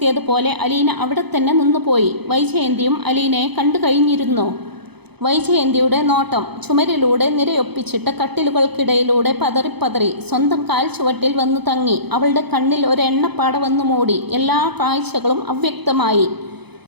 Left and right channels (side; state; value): left; late; 0.98 ms